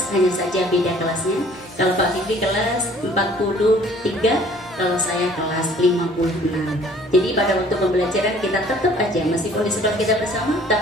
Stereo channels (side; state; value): both; normal; correlation 0.54